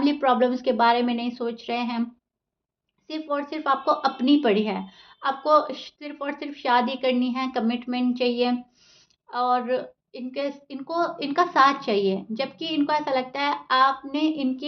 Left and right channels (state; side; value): identical; both; correlation 1.00